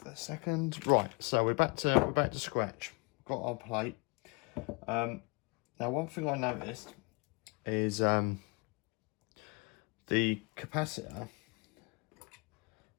a second. Right. So we're back to scratch. Got our plate. Now one thing I noticed is the capacitor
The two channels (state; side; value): quieter; right; 28.7 dB